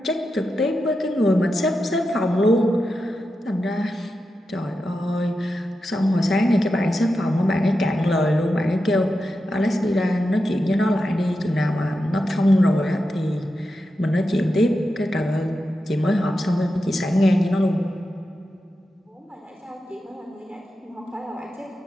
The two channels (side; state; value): both; normal; correlation 0.89